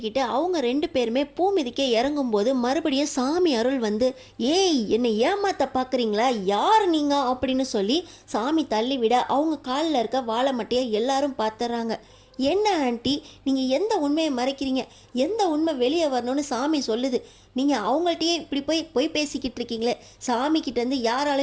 அவங்க 2 பேருமே பூ மிதிக்க இறங்கும்போது மறுபடியும் சாமி அருள் வந்து, ஏய் என்னை ஏமாத்த பார்க்குறீங்களா, யார் நீங்கள் அப்படின்னு சொல்லி சாமி தள்ளி விட அவங்க காலில் இருக்க வாழை மட்டையை எல்லாரும் பார்த்துறாங்க. என்ன ஆண்டி, நீங்கள் எந்த உண்மையை மறைக்கிறீங்க, எந்த உண்மை வெளியே வரணும்னு சாமி சொல்லுது, நீங்கள் அவங்கள்ட்டையே இப்படி போய் பேசிக்கிட்டு இருக்கீங்களே, சாமிக்கிட்டேருந்து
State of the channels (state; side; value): identical; both; correlation 1.00